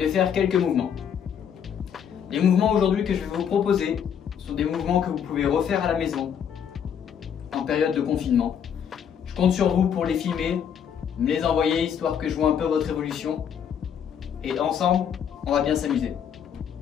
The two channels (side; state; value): right; quieter; 8.2 dB